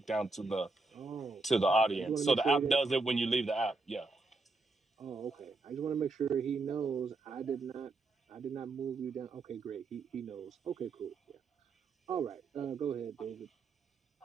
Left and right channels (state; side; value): quieter; left; 3.6 dB